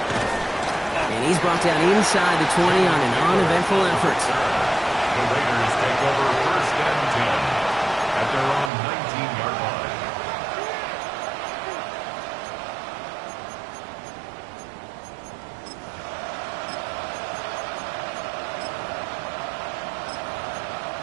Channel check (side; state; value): left; drops out; at 8.7 s